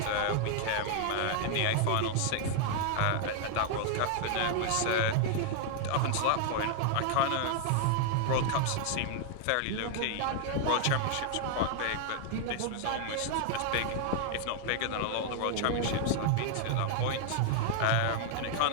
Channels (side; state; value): both; different; correlation 0.00